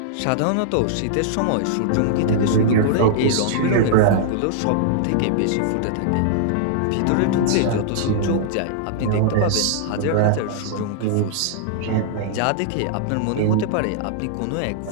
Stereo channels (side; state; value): both; different; correlation -0.01